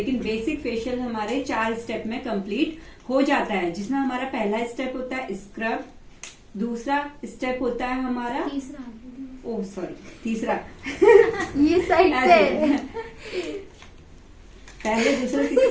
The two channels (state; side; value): identical; both; correlation 1.00